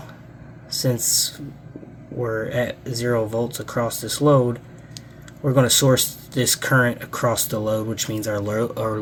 since we're at 0 volts across this load, we're going to source this current across the load, which means our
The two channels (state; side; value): identical; both; correlation 1.00